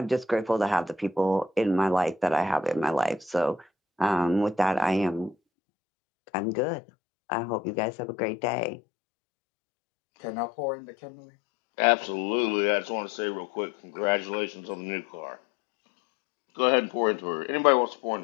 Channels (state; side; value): drops out; right; at 5.4 s